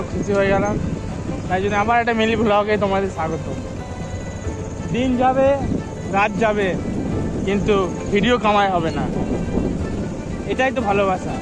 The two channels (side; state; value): both; identical; correlation 1.00